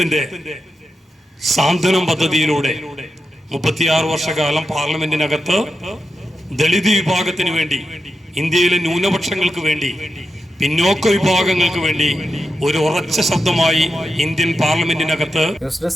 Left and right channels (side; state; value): both; normal; correlation 0.89